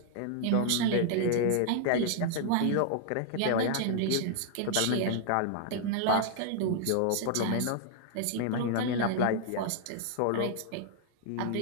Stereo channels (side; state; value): both; different; correlation 0.00